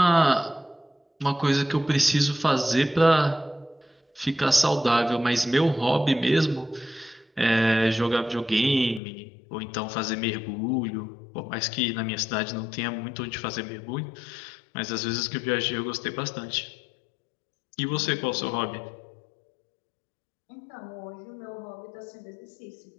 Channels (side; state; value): right; drops out; at 9.0 s